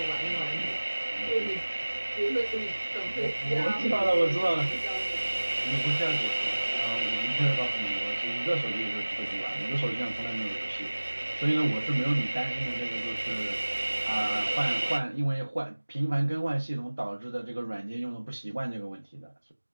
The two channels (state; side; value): inverted; both; correlation -1.00